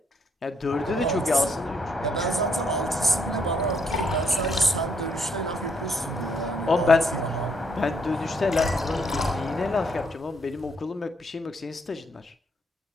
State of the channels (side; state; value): both; normal; correlation 0.73